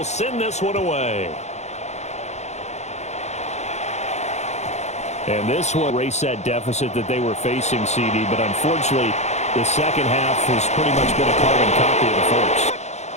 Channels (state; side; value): late; right; 0.33 ms